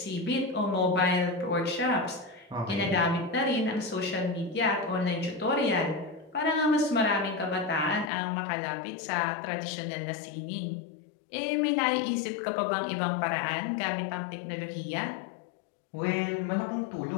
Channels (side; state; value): right; drops out; at 8.1 s